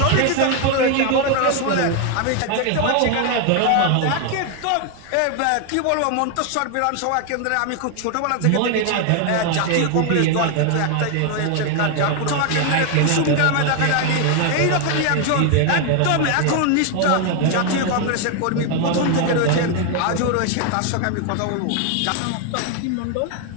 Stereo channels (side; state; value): both; different; correlation 0.01